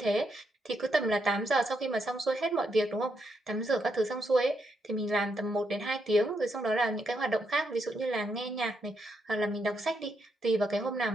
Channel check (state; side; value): normal; both; correlation 0.79